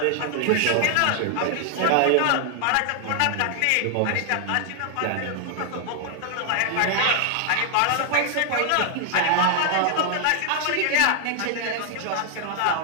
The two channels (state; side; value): different; both; correlation 0.00